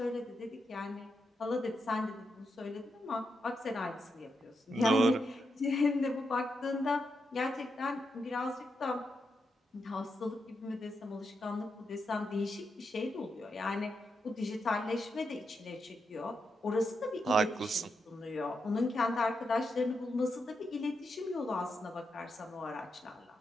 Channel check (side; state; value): both; normal; correlation 0.84